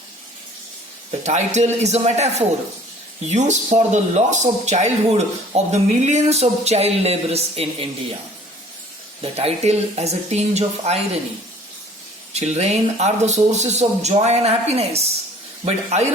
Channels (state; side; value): normal; both; correlation 0.51